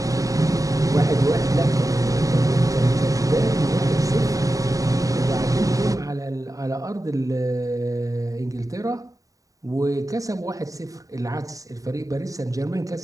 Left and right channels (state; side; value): late; left; 0.16 ms